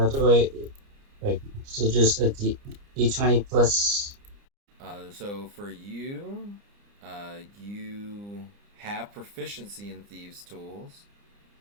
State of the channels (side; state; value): left; late; 29 ms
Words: do I like? So just a D20 plus. So for you, you have proficiency in thieves' tools.